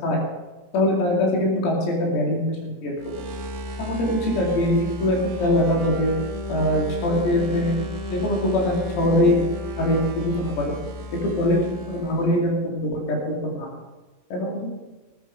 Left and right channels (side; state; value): right; late; 17 ms